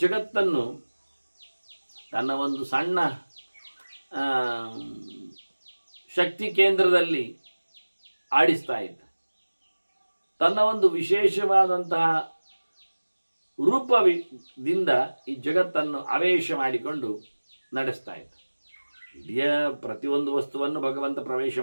ಜಗತ್ತನ್ನು ತನ್ನ ಒಂದು ಸಣ್ಣ ಶಕ್ತಿ ಕೇಂದ್ರದಲ್ಲಿ ಆಡಿಸ್ತಾ ಇದ್ದ. ತನ್ನ ಒಂದು ವಿಶೇಷವಾದಂತಹ ರೂಪದಿಂದ ಈ ಜಗತ್ತನ್ನು ಆವೇಶ ಮಾಡಿಕೊಂಡು ನಡೆಸ್ತಾ ಇದ್ದ. ಇಡೀ ಪ್ರತಿಯೊಂದು ವಸ್ತುವನ್ನು ಭಗವಂತ ಪ್ರವೇಶ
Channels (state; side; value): inverted; both; correlation -1.00